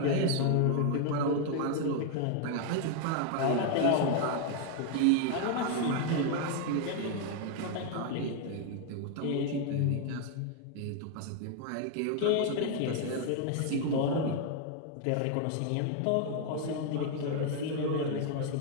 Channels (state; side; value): different; both; correlation 0.00